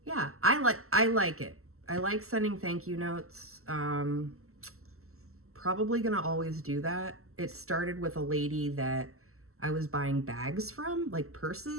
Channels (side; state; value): left; late; 0.63 ms